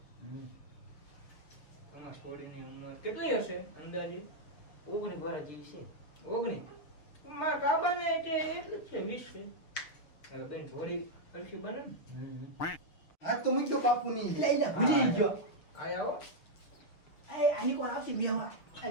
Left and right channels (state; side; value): late; right; 6.6 ms